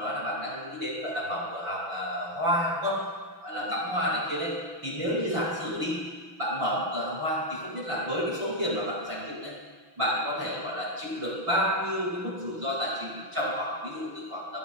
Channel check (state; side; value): late; left; 6.0 ms